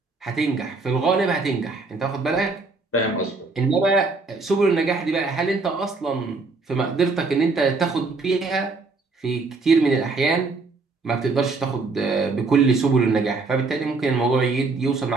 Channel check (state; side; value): quieter; left; 3.9 dB